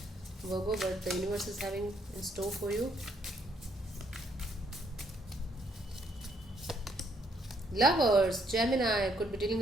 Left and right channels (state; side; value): normal; both; correlation 0.70